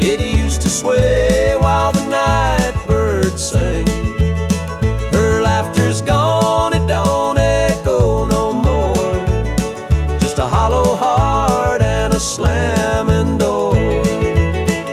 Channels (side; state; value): both; identical; correlation 1.00